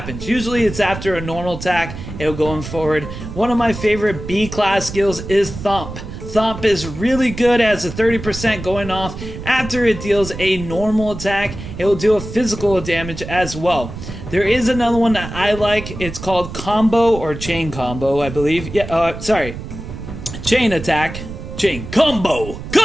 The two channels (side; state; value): right; noise; rumble, 10 dB below the sound